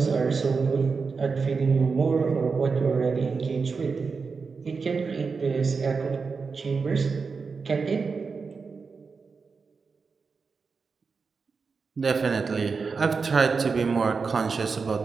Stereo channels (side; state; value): left; quieter; 4.9 dB